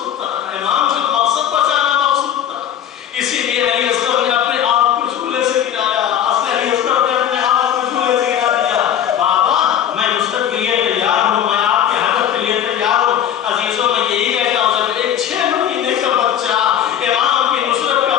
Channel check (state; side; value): quieter; right; 9.8 dB